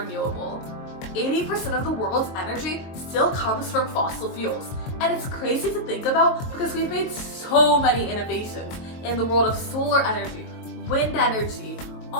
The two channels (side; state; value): right; late; 22 ms